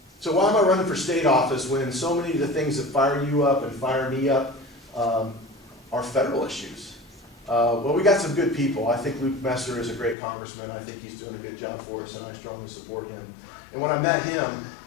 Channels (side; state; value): right; drops out; at 10.2 s